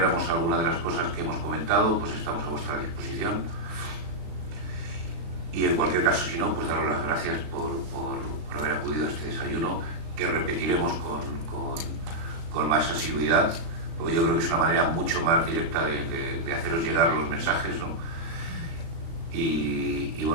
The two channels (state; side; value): late; left; 36 ms